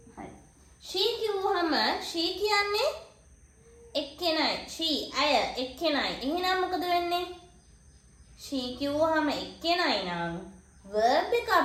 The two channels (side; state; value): both; identical; correlation 1.00